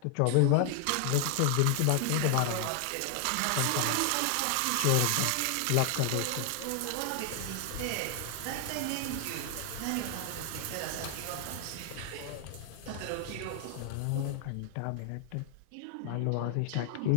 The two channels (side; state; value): both; different; correlation 0.00